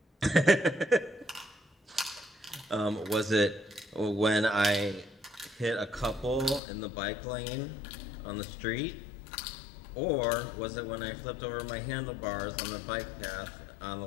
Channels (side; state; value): right; drops out; at 6.6 s